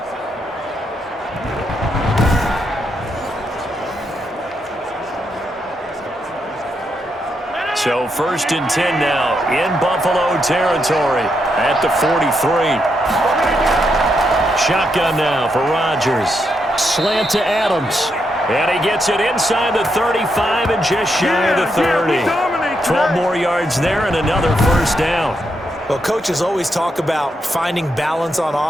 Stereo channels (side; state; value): both; normal; correlation 0.81